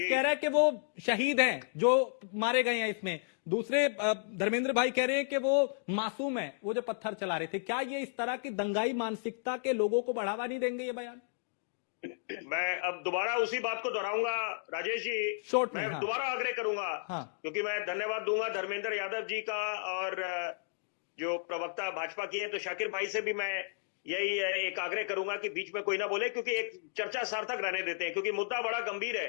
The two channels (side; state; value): right; silent; digital silence